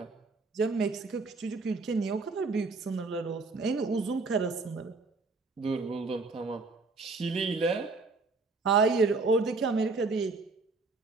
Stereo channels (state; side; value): quieter; left; 3.9 dB